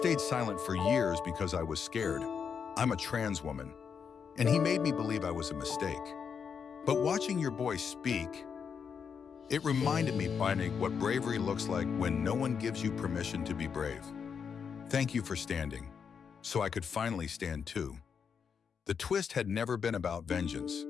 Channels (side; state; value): right; quieter; 6.6 dB